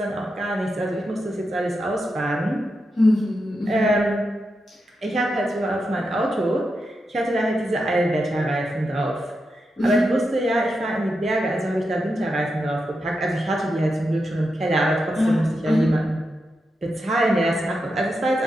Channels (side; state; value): both; normal; correlation 0.87